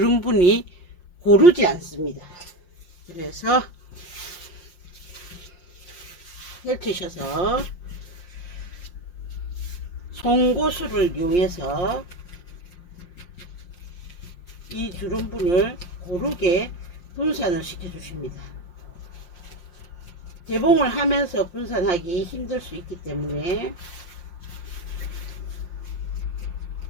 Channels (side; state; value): right; late; 5.7 ms